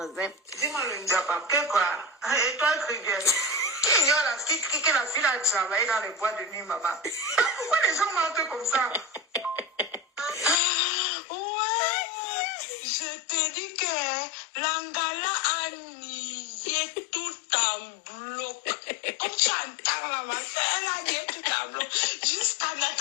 Dis-moi le diable, quoi. Et toi, Triguel, qui ignore que la fille a travaillé dans les boîtes de nuit, maman? Pourquoi les gens mentent comme ça? Ouais, je te dis que l'Angala a nié tout en bloc. Comme tu entends là, ma soeur, elle a nié tout en bloc. Jusqu'à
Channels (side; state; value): right; drops out; at 10.6 s